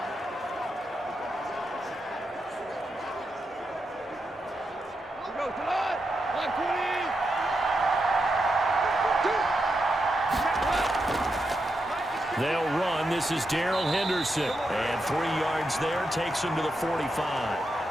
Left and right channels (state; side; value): normal; both; correlation 0.85